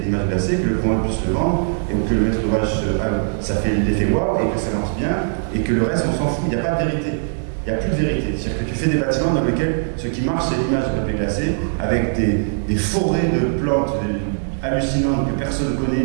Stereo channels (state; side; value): silent; left; digital silence